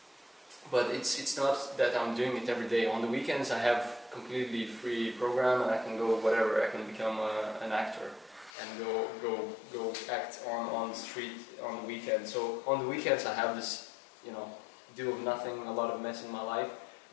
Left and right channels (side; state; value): right; drops out; at 8.5 s